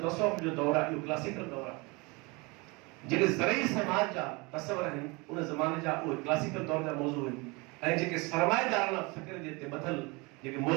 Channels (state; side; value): quieter; left; 26.9 dB